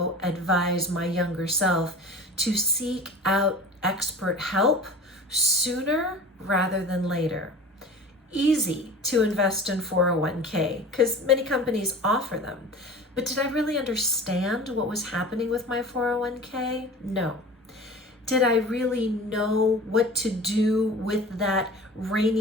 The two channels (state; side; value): normal; both; correlation 0.38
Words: advise my younger self to seek out expert help sooner rather than later. Easy to invest in 401k because many companies offer them. But did I really understand what was happening with my 401k? No. Did I really know what to do with that